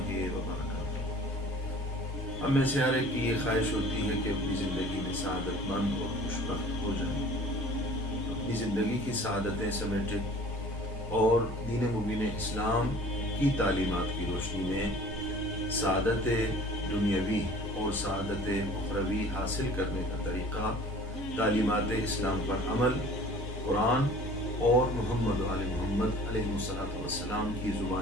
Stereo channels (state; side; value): normal; both; correlation 0.47